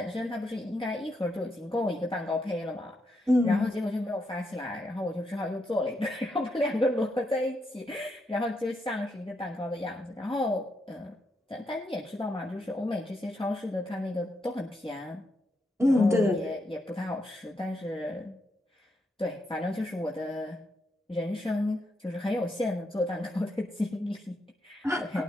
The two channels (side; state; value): both; normal; correlation 0.81